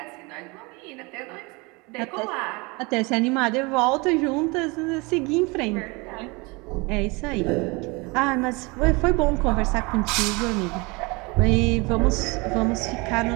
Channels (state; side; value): quieter; left; 26.9 dB